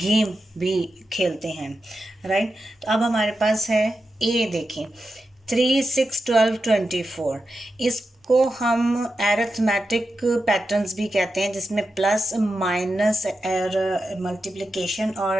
गेम भी खेलते हैं, राइट? तो अब हमारे पास है ए. देखें 3, 6, 12, 24. इसको हम एरिथमेटिक पैटर्न्स भी कहते हैं जिसमें प्लस माइनस और मल्टीप्लिकेशन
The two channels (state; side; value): normal; both; correlation 0.89